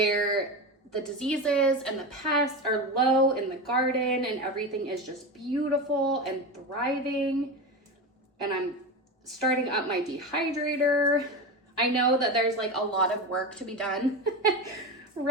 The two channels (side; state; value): both; normal; correlation 0.21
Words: the diseases and the pests are low in the garden and everything is just beautiful and thriving. And I'm starting up my dehydrator. I know that there's like a lot of work to be done